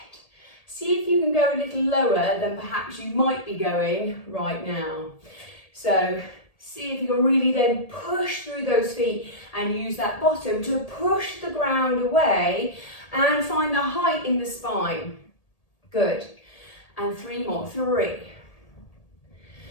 See if you can go a little lower than perhaps you might be going right now. So see if you can really then push through those feet and use that bottom to push the ground away and find the height in the spine. Good. And 3 more. 3.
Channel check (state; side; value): late; right; 1.8 ms